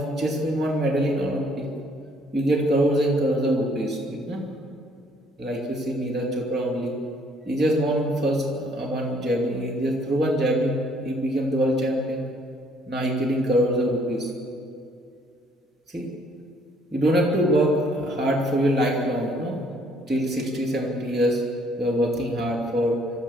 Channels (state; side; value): normal; both; correlation 0.64